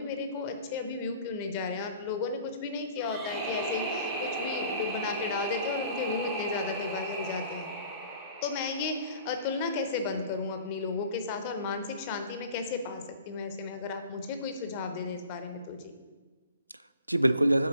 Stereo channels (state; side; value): inverted; both; correlation -0.47